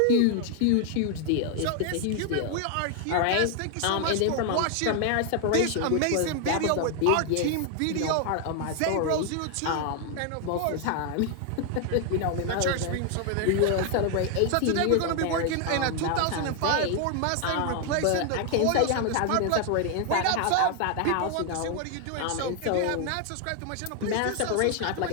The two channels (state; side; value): different; both; correlation 0.00